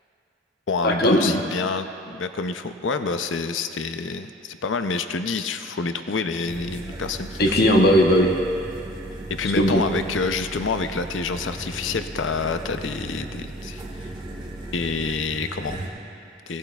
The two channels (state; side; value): normal; both; correlation 0.42